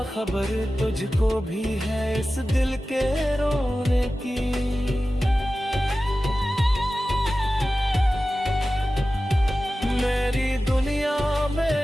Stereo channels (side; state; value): both; normal; correlation 0.95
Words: खबर तुझको भी है इस दिल के रोने की। मेरी दुनिया